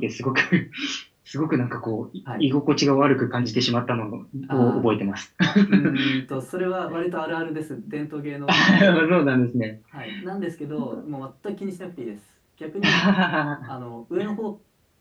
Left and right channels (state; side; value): identical; both; correlation 1.00